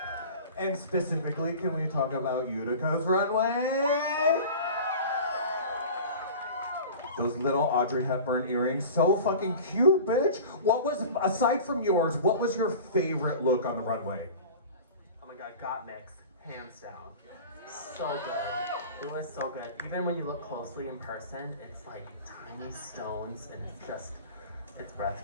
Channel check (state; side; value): inverted; both; correlation -0.37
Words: And specifically, can we talk about Utica's runway? Those little Audrey Hepburn earrings, so fucking cute, bitch. What was, aside from yours, what was your favorite look on the runway? Oh my god, got mixed, hands down. So good. It was so good. Even when you look closely in person, it's like tiny stones, and it's